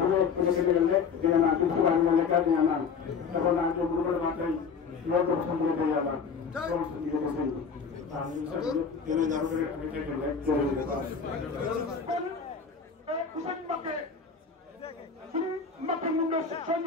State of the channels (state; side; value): quieter; right; 5.8 dB